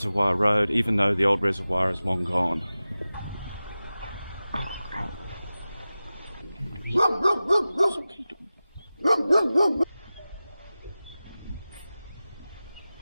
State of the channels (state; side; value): inverted; both; correlation -0.96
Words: Road, even though the old reservoir is long gone.